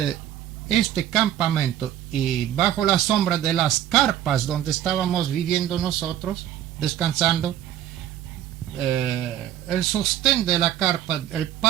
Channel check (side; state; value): left; quieter; 11.6 dB